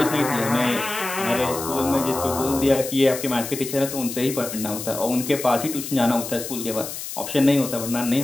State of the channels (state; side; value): noise; left; hiss, 8 dB below the sound